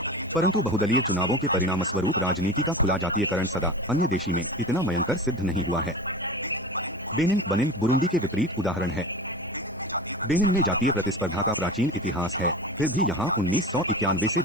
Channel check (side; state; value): both; normal; correlation 0.31